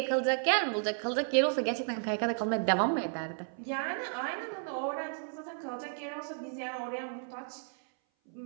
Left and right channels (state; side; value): silent; left; 56 dB below the other